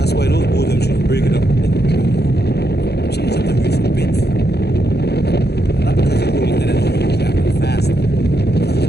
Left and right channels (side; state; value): right; late; 0.48 ms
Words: why those boats them should break it up. Change up the race a bit. Not because you're going in and really traveling fast.